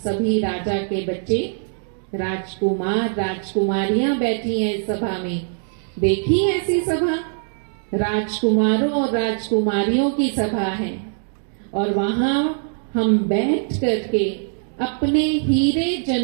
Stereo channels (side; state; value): left; silent; digital silence